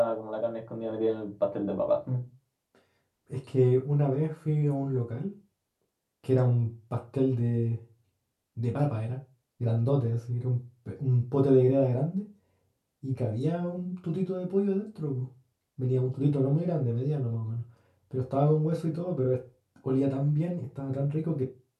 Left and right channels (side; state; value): both; identical; correlation 1.00